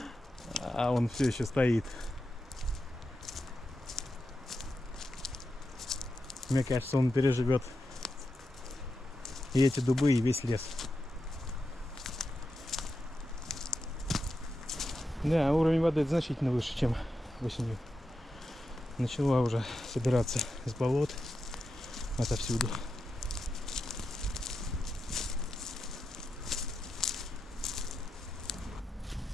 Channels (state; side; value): normal; both; correlation 0.88